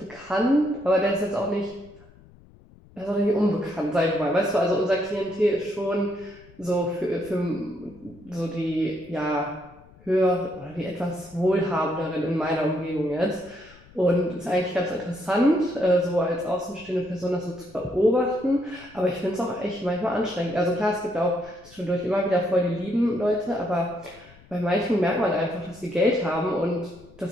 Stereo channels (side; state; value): left; noise; rumble, 24 dB below the sound